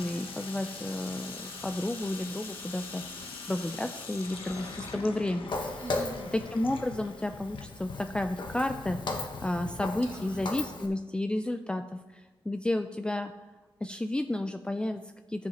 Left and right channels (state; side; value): normal; both; correlation 0.90